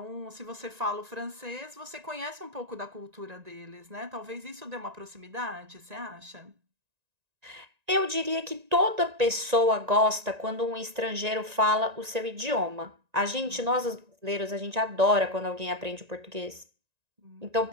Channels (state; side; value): late; left; 1.9 ms